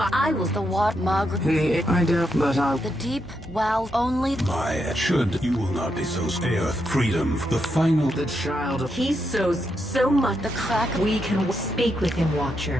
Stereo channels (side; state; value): left; noise; hum, 19 dB below the sound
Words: was The what? Margaret... I doubt, but I... The deep, wow, only... My should you will not be so Earth. Freedom, the final... The child of... He sows so much. The crack... We can speak with him,